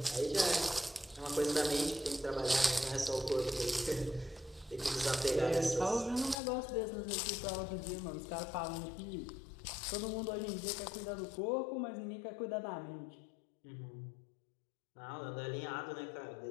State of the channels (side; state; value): right; drops out; at 6.4 s